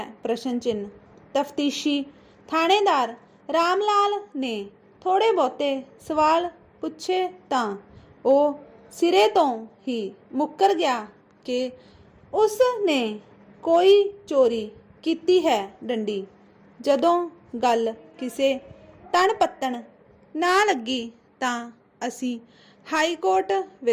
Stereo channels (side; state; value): both; identical; correlation 1.00